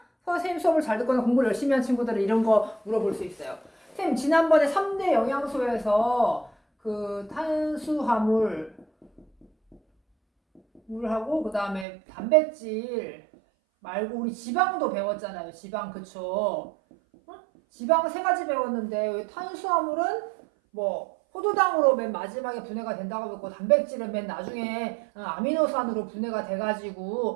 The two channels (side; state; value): left; drops out; at 11.9 s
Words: 선생님 수업을 잘 듣거나 공부를 열심히 한 친구들은 이런 거 물어볼 수 있어요. 선생님 지난번에 3대 영양소에서 그 탄수화물 물하고 그 다음에 단백질 말고 우리 지방도 배웠잖아요. 지방 그쵸? 지방 3가지 배웠는데 탄수화물은 포도당으로 맨 마지막에 분해가 된다고 배웠고 단백질은 맨 나중에 아미노산으로 분해가